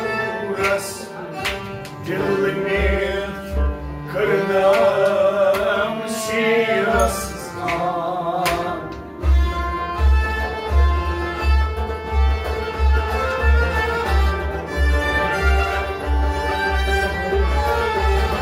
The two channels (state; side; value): identical; both; correlation 1.00